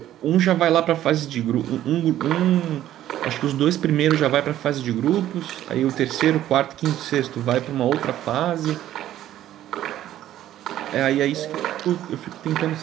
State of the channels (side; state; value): left; quieter; 12.6 dB